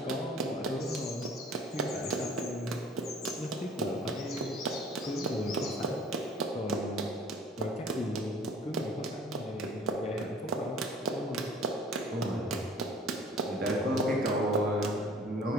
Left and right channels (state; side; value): normal; both; correlation 0.50